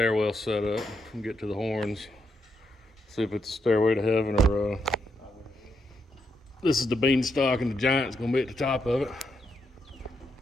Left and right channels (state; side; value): normal; both; correlation 0.80